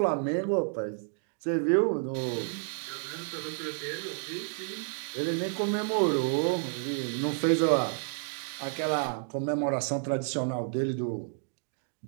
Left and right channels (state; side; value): silent; left; digital silence